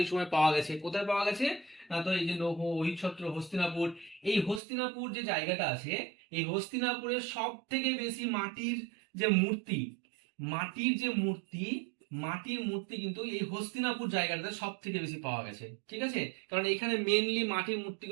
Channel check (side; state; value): left; drops out; at 4.6 s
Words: সময় পাওয়া গেছে। কোথায় পাওয়া গেছে না, তো এই যে লৌহ, অহিচ্ছত্র, হস্তিনাপুর, এই হস্তিনাপুর যে জায়গাটা আছে, এই হস্তিনাপুরের সব থেকে বেশি মাটির যে মূর্তি, মাটির যে মূর্তি, মাটির মূর্তি কিন্তু এই হস্তিনাপুর জায়গাটাতে সব থেকে বেশি পাওয়া গেছে। ঠিক আছে, কারণ এখানে মেনলি মাটির